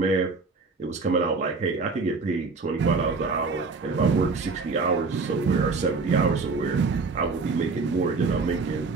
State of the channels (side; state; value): left; quieter; 4.2 dB